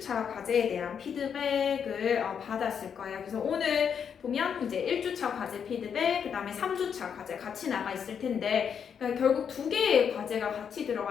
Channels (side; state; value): right; quieter; 7.4 dB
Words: 과제에 대한 피드백을 받았을 거예요. 그래서 오늘 보면 이제 1주차 과제 피드백, 그 다음에 3주차 과제 같이 나가 있을 텐데, 그러니까 결국 두 개의 과제가 같이